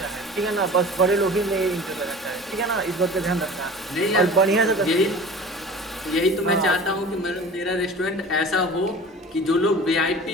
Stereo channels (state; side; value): normal; both; correlation 0.40